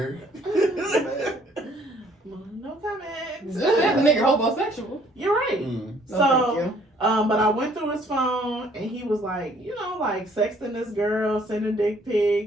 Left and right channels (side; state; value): both; normal; correlation 0.61